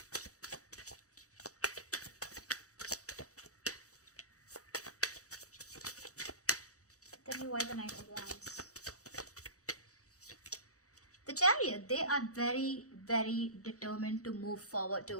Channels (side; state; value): right; late; 0.66 ms